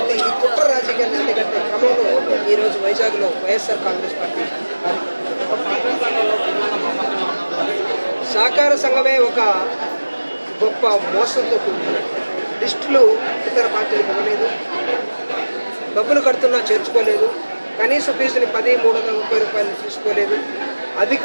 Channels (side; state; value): both; inverted; correlation -1.00